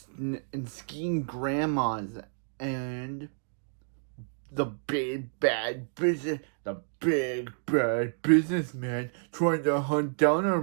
skiing grandmas and the big bad businessman trying to hunt down our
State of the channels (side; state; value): left; silent; digital silence